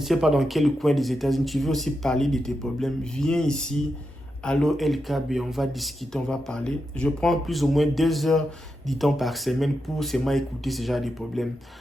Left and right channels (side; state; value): both; normal; correlation 0.87